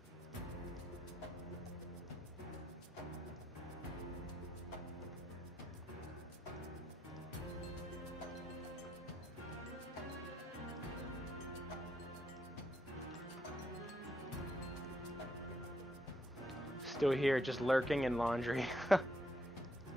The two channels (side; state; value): both; normal; correlation 0.77